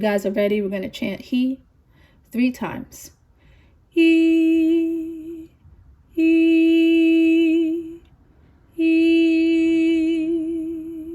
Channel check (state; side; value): identical; both; correlation 1.00